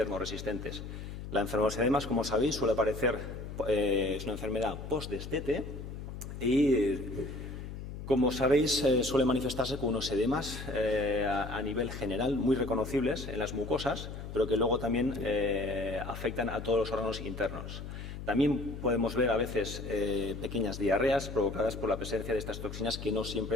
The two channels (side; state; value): left; noise; hum, 9 dB below the sound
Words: La enfermedad de los edemas, como sabéis, suele aparecer, es una enfermedad post-destete y, como sabéis, suele manifestarse con unos edemas a nivel general muy reconocibles en las mucosas, pero que luego también afectan a todos los órganos internos. También podemos ver a veces pequeñas diarreas provocadas por la presencia de estas toxinas, que no